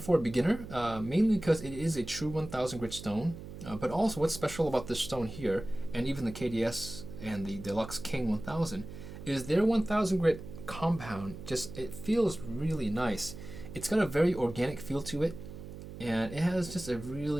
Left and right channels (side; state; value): right; noise; hum, 12 dB below the sound